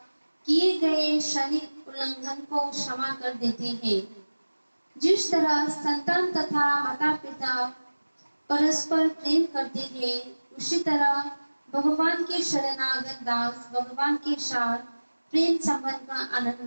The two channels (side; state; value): both; inverted; correlation -1.00